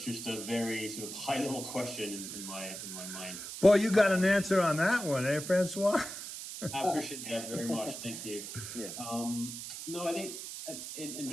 just a very sort of high level question in my mind. Boy, you got an answer on that one, eh, Francois? I appreciate that very much. Thank you. Yeah. No, I think, and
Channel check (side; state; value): right; noise; hiss, 8 dB below the sound